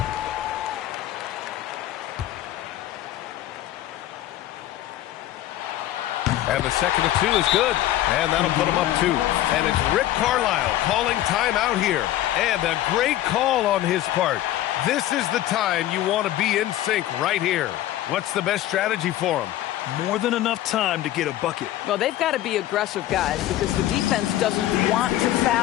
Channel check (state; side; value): quieter; right; 13.8 dB